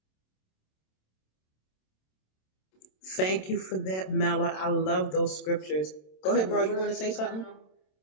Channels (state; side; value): late; right; 27 ms